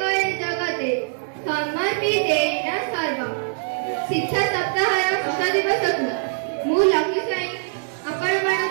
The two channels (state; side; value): silent; left; digital silence